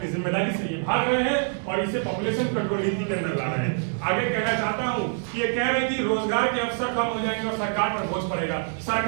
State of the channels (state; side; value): silent; left; 57 dB below the other